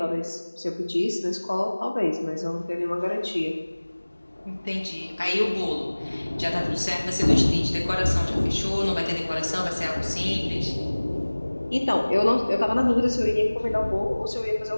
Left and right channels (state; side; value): inverted; both; correlation -1.00